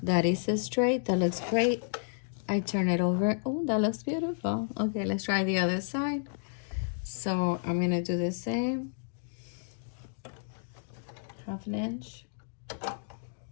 That is a straight. That looks great. I turn it over. Oh, that looks beautiful. Okay, let's try the other side. So I'm gonna do the same. 1/2 inch.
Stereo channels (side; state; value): right; silent; digital silence